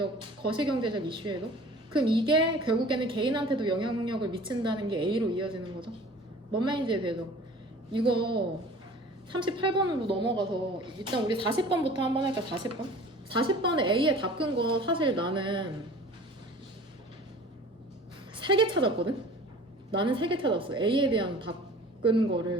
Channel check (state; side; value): normal; both; correlation 0.45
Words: 이슈에도. 그럼 이게 결국에는 개인한테도 영향력을 미친다는 게 A로 이어지는 거죠. 뭔 말인지 되죠? 이거 38번으로 넘어가서 일단 우리 40번부터 한번 할까? 40번? 40번에 A에 답 끈 거 사실 나는 3개 찾았거든? 나는 3개 찾았어. A에 대한 답 끈